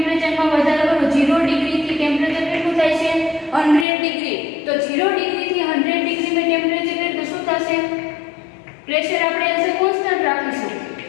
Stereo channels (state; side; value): drops out; right; at 3.9 s